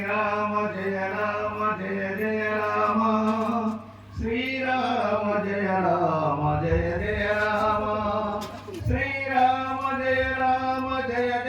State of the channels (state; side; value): identical; both; correlation 1.00